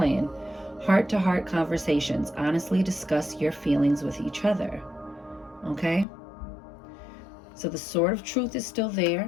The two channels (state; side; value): drops out; right; at 6.1 s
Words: Heart-to-heart conversations. Honestly discuss your feelings with each other. Okay? So the sword of truth is still